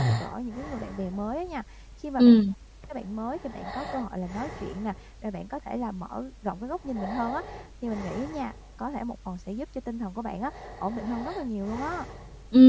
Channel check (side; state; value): both; identical; correlation 1.00